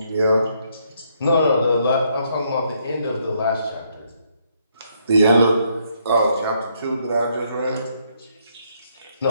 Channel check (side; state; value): both; inverted; correlation -0.72